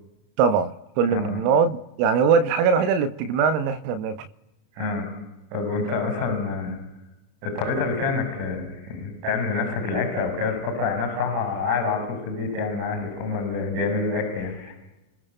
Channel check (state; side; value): late; left; 35 ms